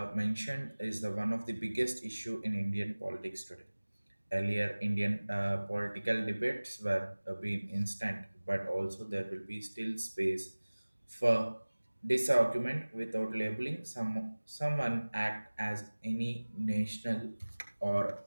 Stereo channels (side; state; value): both; inverted; correlation -1.00